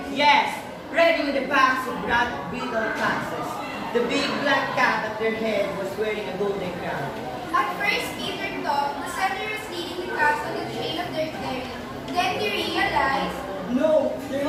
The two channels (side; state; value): both; identical; correlation 1.00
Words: Yes, ready with the packs of broad beetle foxes. The big black cat at their head was wearing a golden crown. At first, Peter thought the setter was leading the cats on the trail of their ferry. Then he realized No, they're